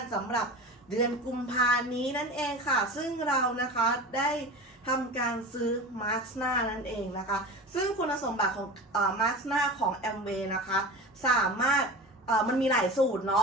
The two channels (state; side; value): normal; both; correlation 0.32